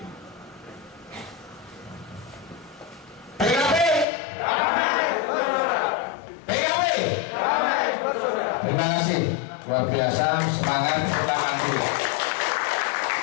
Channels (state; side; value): drops out; right; at 4.0 s